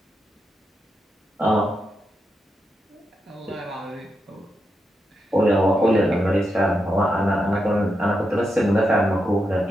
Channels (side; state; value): both; normal; correlation 0.85